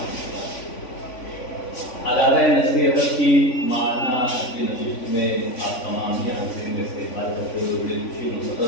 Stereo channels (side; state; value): right; late; 3.5 ms